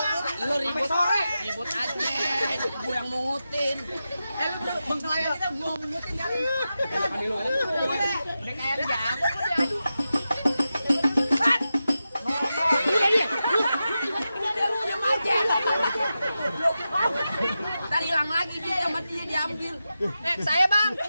Lu ribut sore. Ribut aja, gue yang mungutin. Lu bengkelaya kita gua mungutin kali. Ani lu. Udah kayak jago kok diadu. Tadi hilang lagi dia sama dia diambil. Saya bang.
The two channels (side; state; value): both; inverted; correlation -0.91